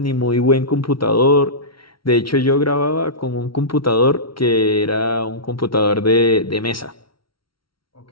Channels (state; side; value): late; right; 0.74 ms